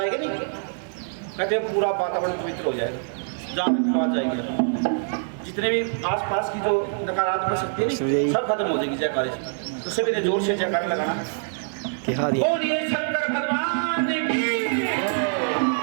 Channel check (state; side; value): silent; left; digital silence